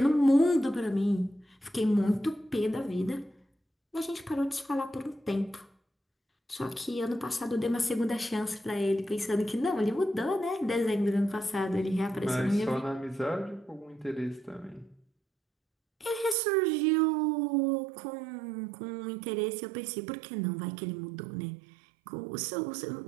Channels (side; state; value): left; drops out; at 16.4 s